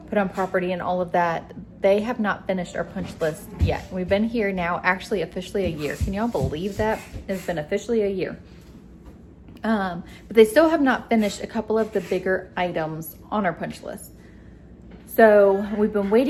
put on property and all of that, they have not finished our punch list yet. We've been here now actually officially a year. Can y'all believe that? It's been officially a year. But they still have not finished a couple of the bigger items on our punch list. So we've been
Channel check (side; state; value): both; identical; correlation 1.00